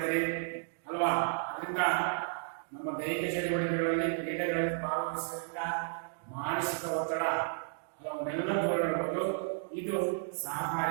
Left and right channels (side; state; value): left; silent; digital silence